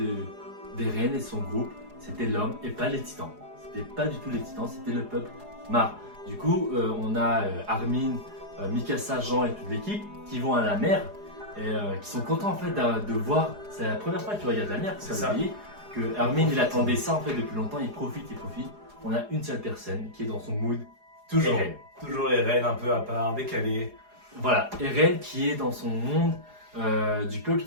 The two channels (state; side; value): late; left; 4.8 ms